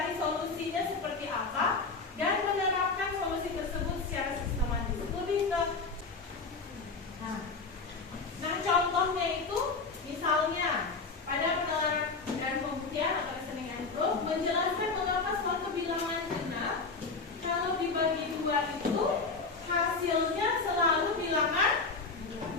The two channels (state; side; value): quieter; right; 4.2 dB